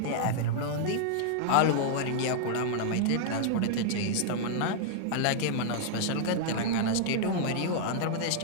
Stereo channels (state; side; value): different; both; correlation -0.01